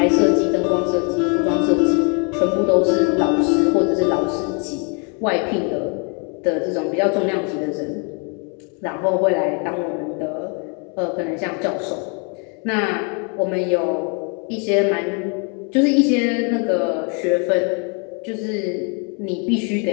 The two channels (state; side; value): quieter; right; 36.3 dB